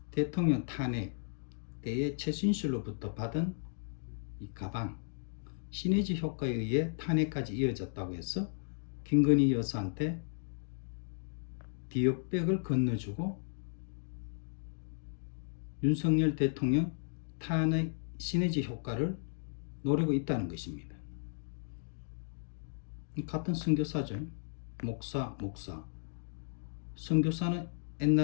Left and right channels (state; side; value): silent; right; digital silence